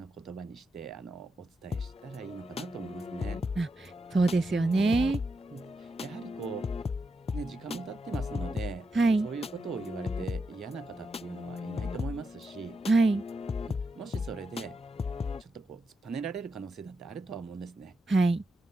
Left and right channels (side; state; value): both; normal; correlation 0.85